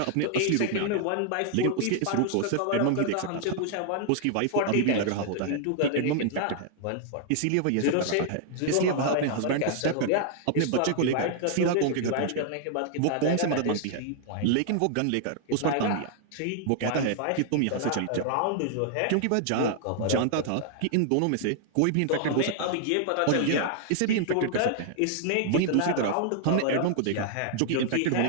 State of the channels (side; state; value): both; different; correlation 0.00